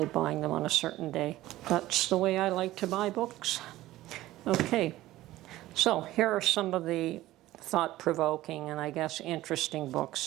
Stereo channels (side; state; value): left; quieter; 16.1 dB